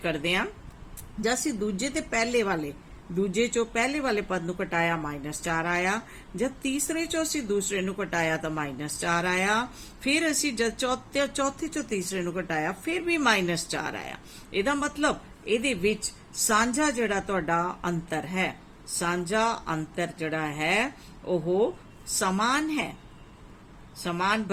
करदे हां जद असी दूजे ते पहले वाले दूजे चो पहले वाले पद नूं घटाया -4 आया, जब तीसरे चो असी दूसरे नूं घटाया तो -4 आया, फिर असी जब चौथे चो तीसरे नूं घटाया फिर भी -4 आया। इहदा मतलब इहदे विच सांझा जिहड़ा तुहाडा अंतर है, सांझा अंतर जिहड़ा है ओह समान है, समान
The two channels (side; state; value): both; identical; correlation 1.00